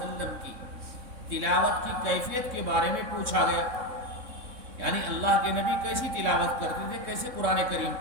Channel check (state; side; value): late; left; 3.6 ms